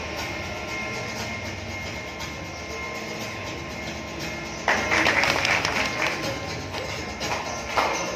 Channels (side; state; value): both; identical; correlation 1.00